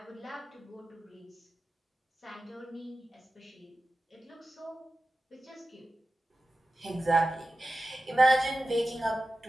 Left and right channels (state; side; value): normal; both; correlation 0.94